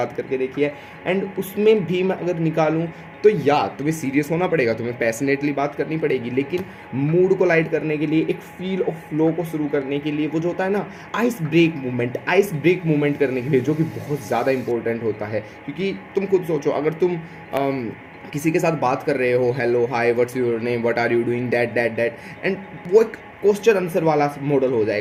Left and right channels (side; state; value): both; identical; correlation 1.00